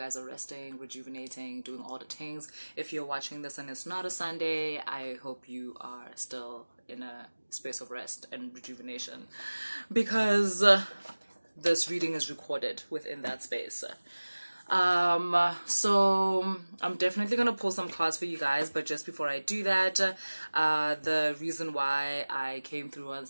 are resting, rejuvenating, doing all the things. If you're watching this and it's not a Sunday, I hope you are still in a space of rest and rejuvenation because this reading is recorded within that space. So I'm definitely gonna pull some cards for you guys, but just before I do that, the reason why I came through on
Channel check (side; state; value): both; inverted; correlation -1.00